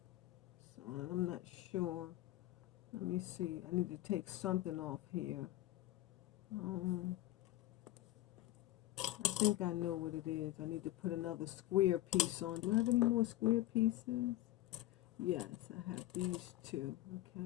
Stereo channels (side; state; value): right; quieter; 15.8 dB